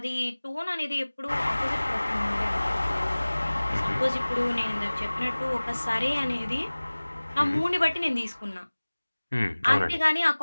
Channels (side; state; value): both; inverted; correlation -1.00